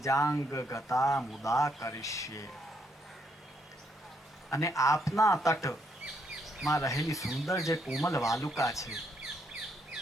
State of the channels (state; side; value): normal; both; correlation 0.74